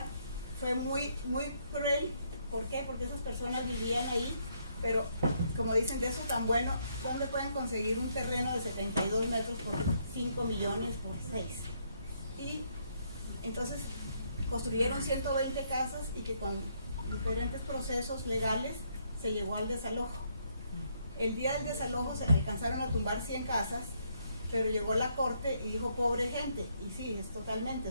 fue muy cruel. ¿Por qué? Porque esas personas vivían ahí, pero como dicen, de eso tan bueno, ¿dónde pueden conseguir un terreno de 72 metros por 5 millones por 6? Y entonces construyeron 120 casas, y que con diferentes procesos legales se llegó al desalojo. El día del desalojo se alcanzaron a tumbar 100 casas, pero llegó la corte y dijo pobre gente, y sí, es totalmente,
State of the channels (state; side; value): inverted; both; correlation -0.72